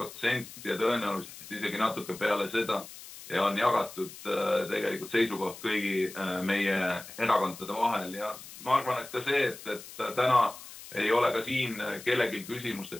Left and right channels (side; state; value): left; noise; hiss, 15 dB below the sound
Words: ja tõenäoliselt isegi natuke peale seda ja on jagatud tegelikult seisukoht kõigi meie erakondade vahel. Ja ma arvan, et ka see, et täna ei ole ka siin kellelgi küsimust, et